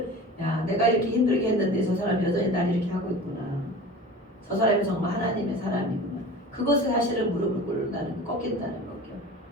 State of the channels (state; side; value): normal; both; correlation 0.37